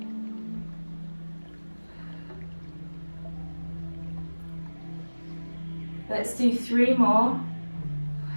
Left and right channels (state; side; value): inverted; both; correlation -1.00